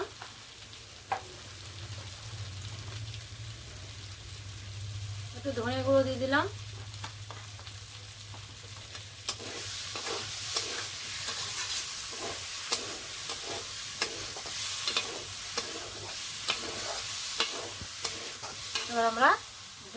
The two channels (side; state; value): both; identical; correlation 1.00